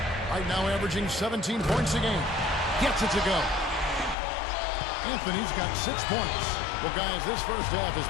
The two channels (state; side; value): drops out; right; at 4.2 s